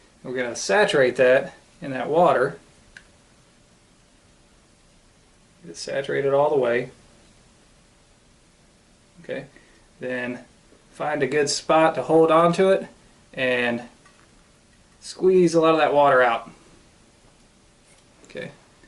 And we're going to saturate that in that water. Get it saturated all the way. Okay, then find a good spot to hold on to it and squeeze a lot of that water out. Okay,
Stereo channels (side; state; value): both; identical; correlation 1.00